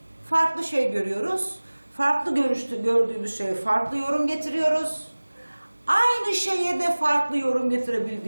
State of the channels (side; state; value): both; inverted; correlation -1.00